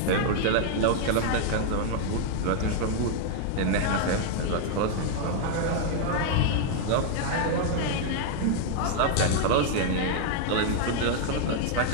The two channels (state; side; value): different; both; correlation 0.00